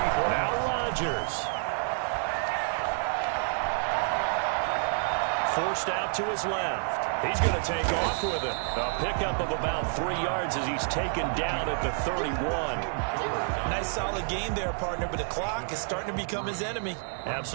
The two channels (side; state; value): left; silent; digital silence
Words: Now Rodgers. Forced out to his left. He's going to take off with it. A pickup of about 3 yards as he's taken down at the 31. Nice solid game there, partner, but the clock is starting to become his enemy.